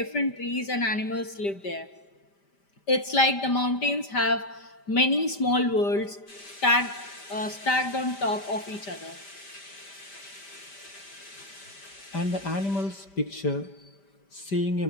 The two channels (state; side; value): late; right; 5.1 ms